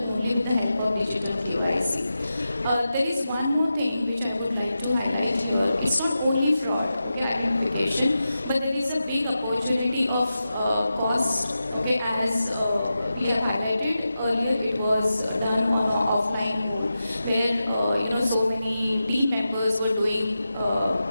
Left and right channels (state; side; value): inverted; both; correlation -0.91